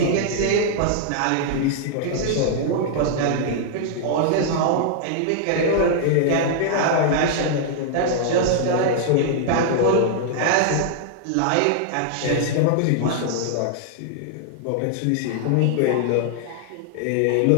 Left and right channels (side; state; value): both; different; correlation -0.01